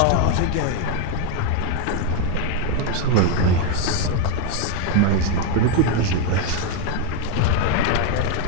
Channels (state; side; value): different; both; correlation 0.01